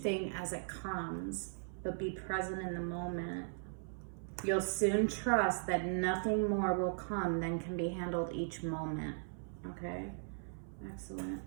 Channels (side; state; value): left; silent; 52 dB below the other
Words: as it comes, but be present in the moment. You'll soon trust that nothing more will come than can be handled each moment. Okay? Excellent.